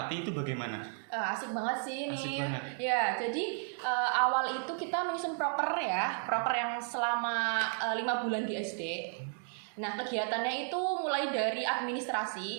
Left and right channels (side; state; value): left; silent; 55 dB below the other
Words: itu bagaimana? Asik banget sih ini. Asik banget. Ya, jadi awal itu kita menyusun proker yang selama 5 bulan di SD. Nah, kegiatannya itu mulai dari